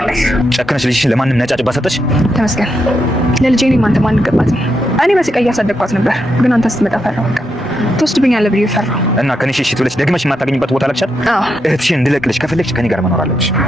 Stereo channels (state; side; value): normal; both; correlation 0.82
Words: ጨክነሽ ልጅሽን ለማንም ነጫጭባ ሰጠሽ? ተመስገን። ለልጄ እኔም አንተ ማን ገባትም። እኔ በስቃይ እያሳደግኳት ነበር፣ ግን አንተ ስትመጣ ፈራሁ። ትወስድብኛለህ ብዬ ፈራሁ እና ከኔ ሽሽት ብለሽ ደግመሽ የማታገኝበት ቦታ ላክሻል። እህትሽን እንድለቅልሽ ከፈለግሽ ከኔ ጋር መኖር አለብሽ።